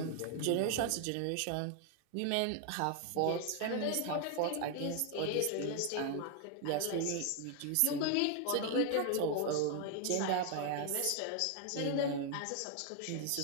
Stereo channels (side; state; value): both; different; correlation 0.00